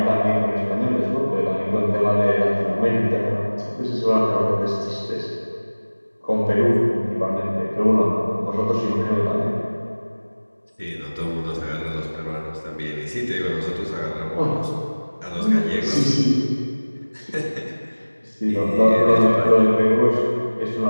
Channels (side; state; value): both; inverted; correlation -1.00